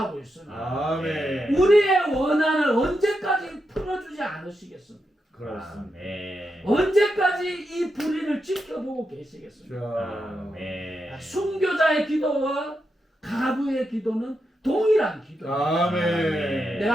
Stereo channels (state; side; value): normal; both; correlation 0.86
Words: 있습니다. 아멘. 우리의 원한을 언제까지 풀어주지 않으시겠습니까? 그렇습니다. 아멘. 언제까지 이 불의를 지켜보고 계시겠습니까? 자, 아멘. 순교자의 기도와 가부의 기도는 동일한 기도예요. 아멘.